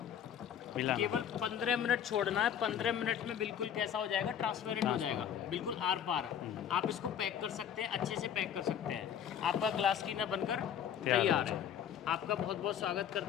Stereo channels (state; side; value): quieter; right; 9.0 dB